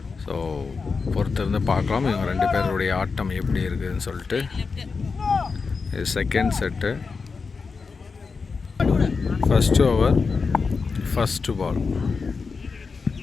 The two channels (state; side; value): quieter; right; 4.8 dB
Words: ஸோ பொறுத்திருந்து பார்க்கலாம் இவங்க ரெண்டு பேருடைய ஆட்டம் எப்படி இருக்குதுன்னு சொல்லிட்டு. இது second set. First over, first ball.